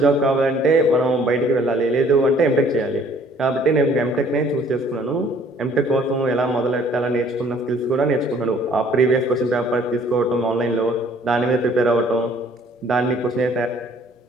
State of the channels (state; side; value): normal; both; correlation 0.58